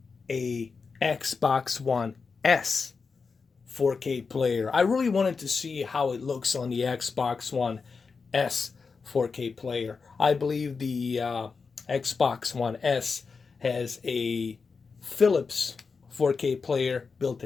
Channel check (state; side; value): quieter; right; 4.9 dB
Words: a Xbox One S 4K player. I really wanted to see how it looks on the Xbox One S 4K player. I believe the Xbox One S has a Philips 4K player built